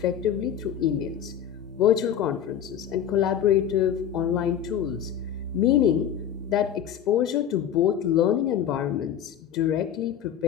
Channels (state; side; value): quieter; right; 9.3 dB